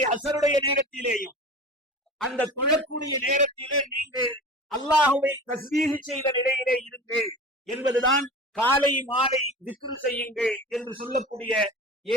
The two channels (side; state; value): both; normal; correlation 0.35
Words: அசருடைய நேரத்திலேயும் அந்த தொழக்கூடிய நேரத்திலே நீங்கள் அல்லாஹ்வை தஸ்பீஹ் செய்த நிலையிலே இருங்கள் என்பதுதான் காலை மாலை திக்ர் செய்யுங்கள் என்று சொல்லக்கூடிய